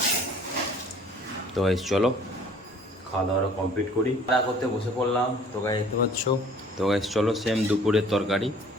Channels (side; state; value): both; normal; correlation 0.53